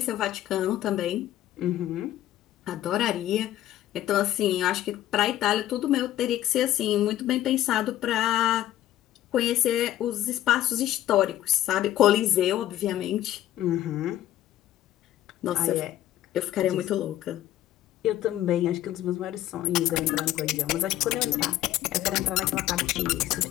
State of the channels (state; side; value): quieter; right; 13.4 dB